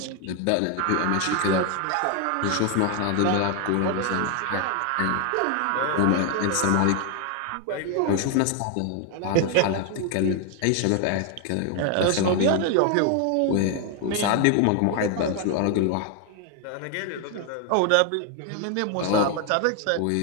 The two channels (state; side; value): different; both; correlation 0.01